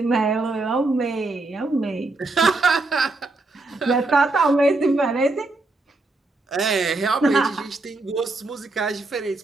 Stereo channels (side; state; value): left; quieter; 3.1 dB